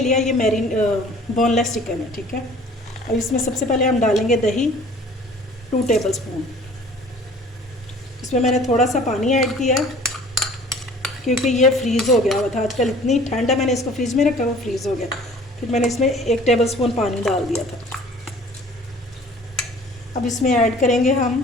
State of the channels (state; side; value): normal; both; correlation 0.49